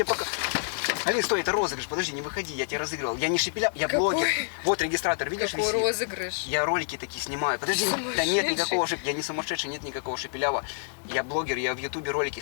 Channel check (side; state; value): right; silent; digital silence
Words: пока... Алин, стой, это розыгрыш, подожди, не выходи, я тебя разыгрывал. Я не Шепеляв, я Какой? блогер. Вот регистратор, видишь, Какой висит? розыгрыш? Я ролики такие снимаю. Подожди, да нет Сумасшедший. никакого я не сумасшедший, нет никакого Шепелява. Я блогер, я в Ютубе ролики